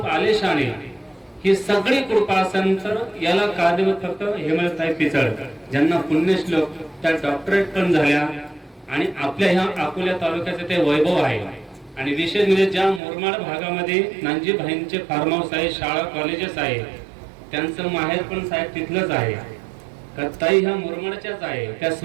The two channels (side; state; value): left; drops out; at 13.0 s